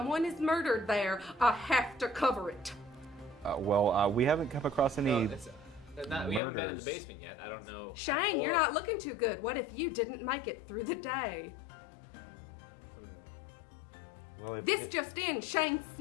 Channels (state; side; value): drops out; right; at 6.4 s